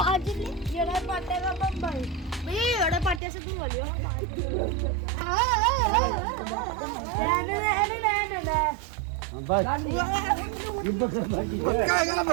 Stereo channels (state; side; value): drops out; left; at 3.2 s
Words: येड़ा पाटे का बम भाई येड़ा पाटे से दूर वालियो